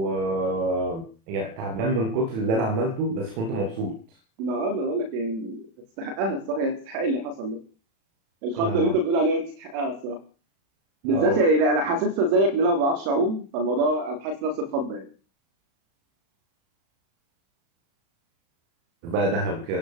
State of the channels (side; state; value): left; late; 36 ms